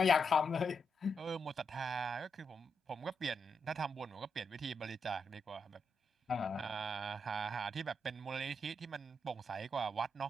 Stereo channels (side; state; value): both; normal; correlation 0.82